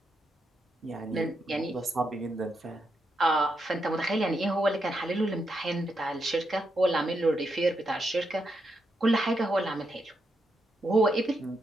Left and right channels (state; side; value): normal; both; correlation 0.82